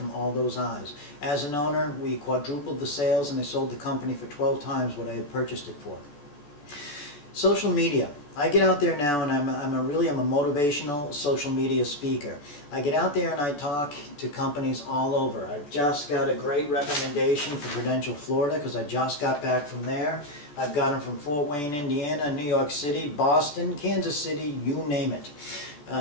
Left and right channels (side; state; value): right; late; 14 ms